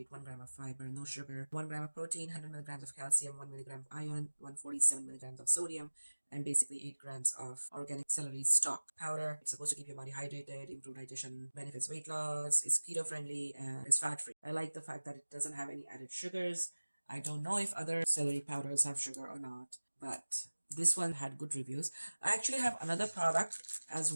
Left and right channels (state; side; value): inverted; both; correlation -1.00